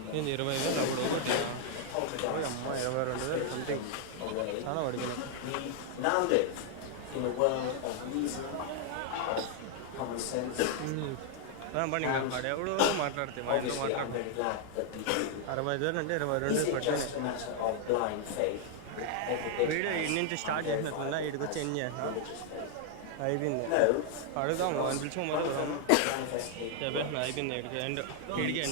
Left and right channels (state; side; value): different; both; correlation 0.00